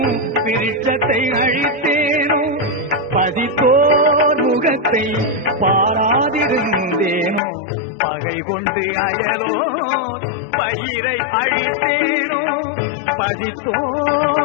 விருட்சத்தை அழித்தேனோ பதித்தோர் முகத்தை பாராதிருந்தேனோ பகை கொண்டு அயலோர் பயிரை அழித்தேனோ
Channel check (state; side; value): drops out; right; at 7.4 s